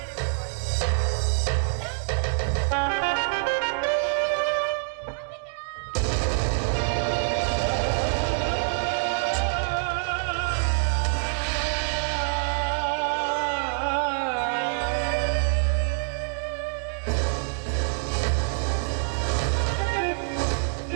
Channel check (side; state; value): left; silent; digital silence